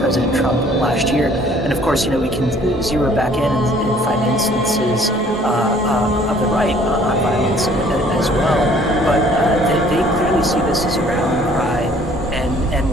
Trump last year. And of course, we can zero back in and find instances of the right on violence as well. But they clearly see this as a rallying cry and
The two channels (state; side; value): normal; both; correlation 0.57